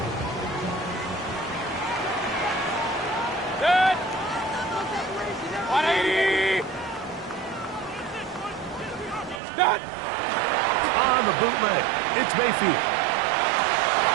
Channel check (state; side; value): drops out; left; at 9.4 s